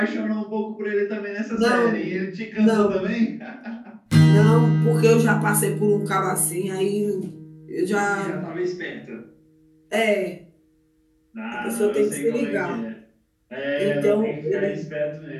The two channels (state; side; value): identical; both; correlation 1.00